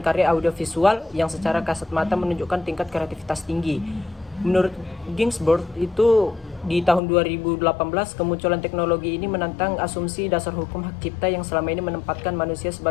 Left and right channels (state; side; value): drops out; right; at 7.0 s